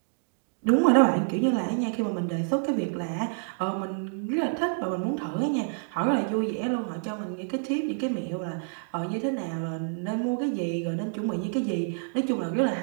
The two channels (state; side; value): silent; left; digital silence